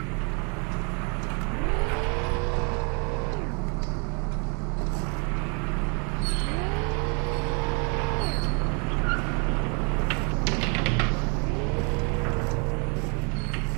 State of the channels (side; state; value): left; quieter; 35.6 dB